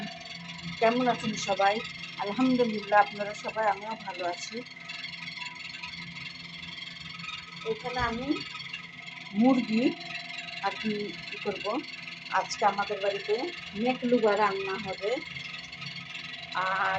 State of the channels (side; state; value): both; identical; correlation 1.00